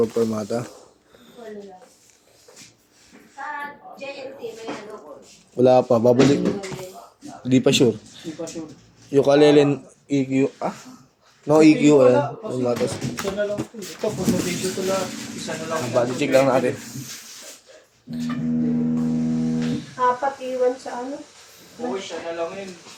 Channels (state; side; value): identical; both; correlation 1.00